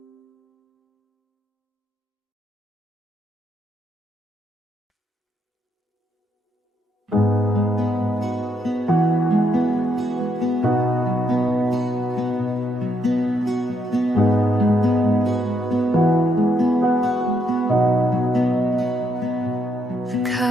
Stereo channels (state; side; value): normal; both; correlation 0.76